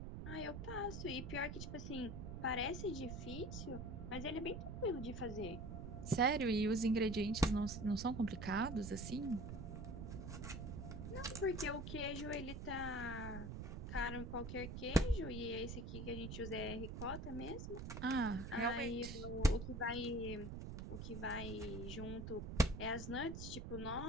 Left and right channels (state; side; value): noise; right; rumble, 6 dB below the sound